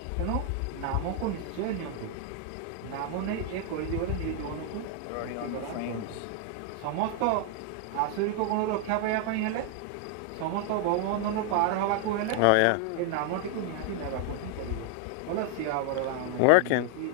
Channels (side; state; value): both; different; correlation 0.00